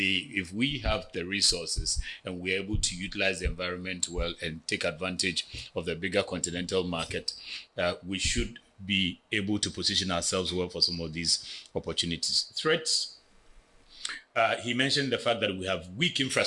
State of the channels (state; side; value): identical; both; correlation 1.00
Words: we have the resources and we're able to utilize the environment well and take advantage of the bigger continental market, we should be able to position ourselves well for some of these opportunities. Threats, he mentioned the fact that we have weak